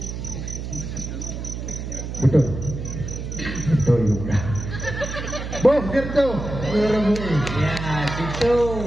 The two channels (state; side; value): noise; right; hum, 6 dB below the sound